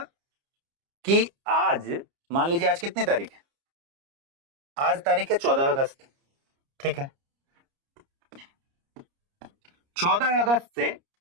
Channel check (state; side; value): late; left; 30 ms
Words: कि आज मान लीजिए आज कितनी तारीख है? आज तारीख है 14 अगस्त। ठीक है, 14 अगस्त से